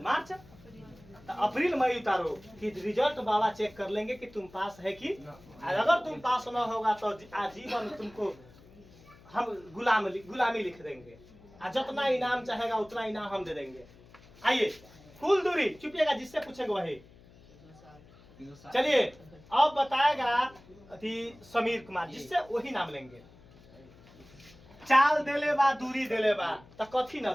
मार्च तो अप्रैल मई उतारो कि रिजल्ट बाबा चेक कर लेंगे कि तुम पास है कि। अगर तुम पास ना होगा तो आजीवन तुमको हम गुलामी लिख देंगे, और जितना इनाम चाहेगा उतना इनाम हम दे देंगे। आइए कुल दूरी, चुपिएगा जिससे पूछेंगे वही। चलिए अब बताएगा अति समीर कुमार, जिससे वही नाम लेंगे। चाल देले बा, दूरी देले बा, तो कथी न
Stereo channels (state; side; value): noise; left; hum, 24 dB below the sound